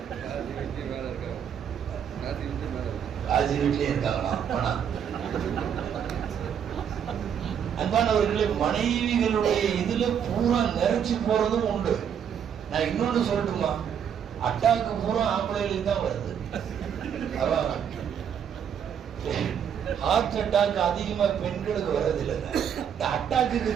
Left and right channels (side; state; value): left; quieter; 8.3 dB